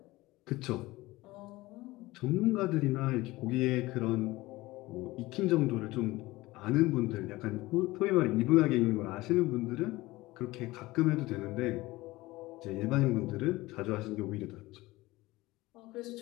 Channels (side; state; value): right; quieter; 19.5 dB